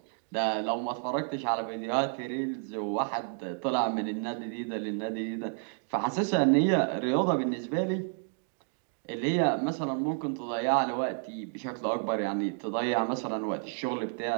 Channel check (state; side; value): silent; left; 57 dB below the other